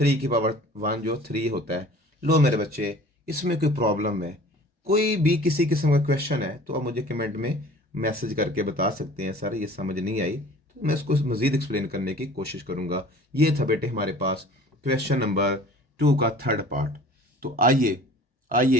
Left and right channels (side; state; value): both; normal; correlation 0.46